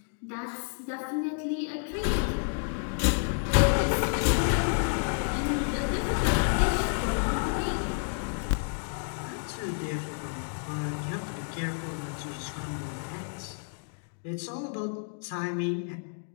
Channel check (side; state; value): right; silent; 58 dB below the other